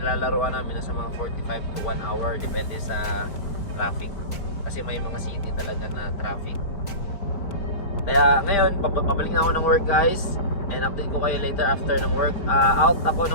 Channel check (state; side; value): late; right; 4.5 ms